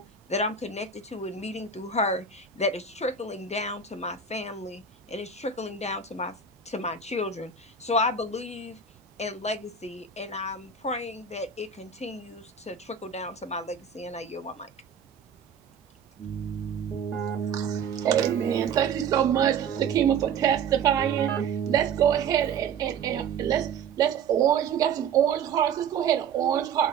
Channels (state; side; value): quieter; left; 6.0 dB